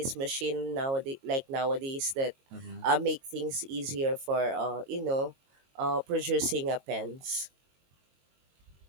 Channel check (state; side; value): late; left; 22 ms